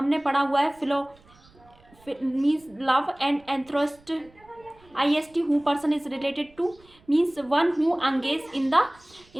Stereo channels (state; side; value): noise; right; rumble, 28 dB below the sound